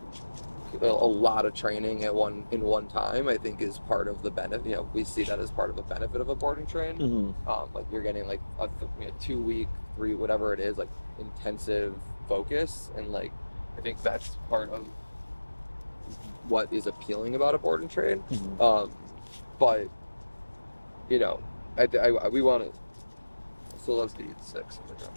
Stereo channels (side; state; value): both; inverted; correlation -1.00